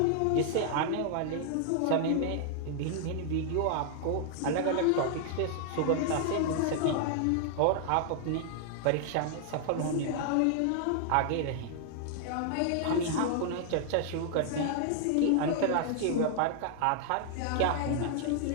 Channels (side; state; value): both; different; correlation -0.01